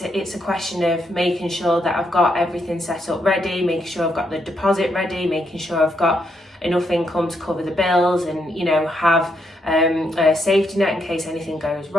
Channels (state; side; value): normal; both; correlation 0.78